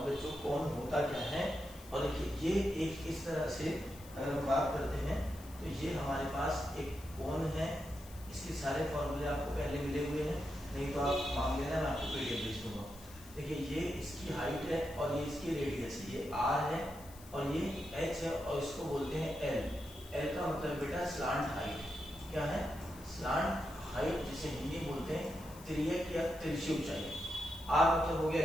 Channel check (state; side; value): noise; left; hiss, 19 dB below the sound